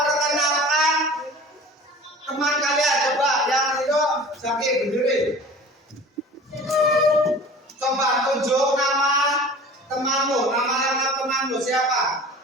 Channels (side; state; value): both; normal; correlation 0.42